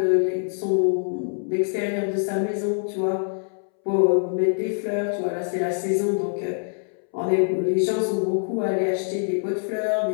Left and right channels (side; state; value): right; silent; 62 dB below the other